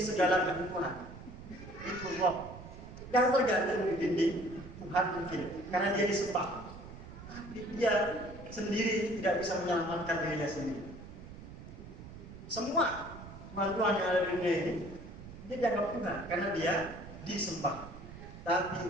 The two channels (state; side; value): noise; right; rumble, 14 dB below the sound